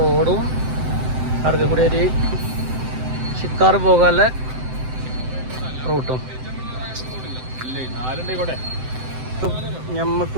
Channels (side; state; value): left; late; 7.8 ms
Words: അടുക്ക കൂടി ഒരു ഷിക്കാർ പോകാനുള്ള റൂട്ടും. ഞമ്മക്ക്